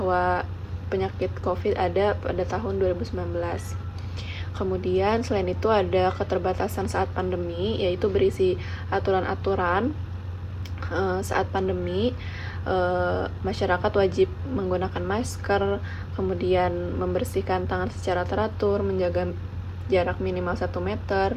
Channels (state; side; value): identical; both; correlation 1.00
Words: penyakit COVID ada pada tahun 2019. Kemudian selain itu ada keterbatasan saat pandemi, yaitu berisi aturan-aturan saat pandemi. Masyarakat wajib menggunakan masker, kemudian membersihkan tangan secara teratur, menjaga jarak minimal 1 meter.